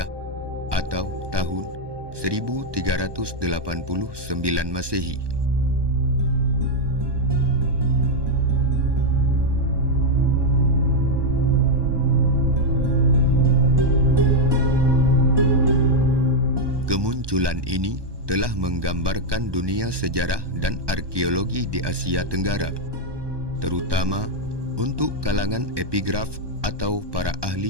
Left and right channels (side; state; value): left; late; 1.2 ms